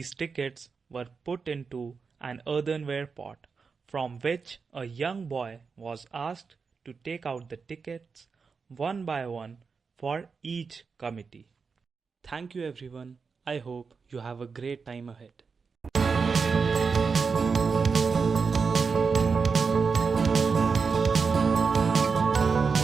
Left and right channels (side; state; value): left; quieter; 5.2 dB